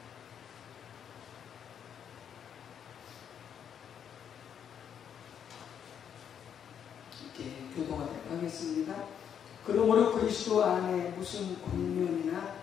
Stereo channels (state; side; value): quieter; right; 8.4 dB